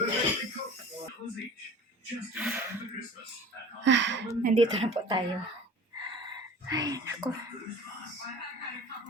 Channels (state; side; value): normal; both; correlation 0.41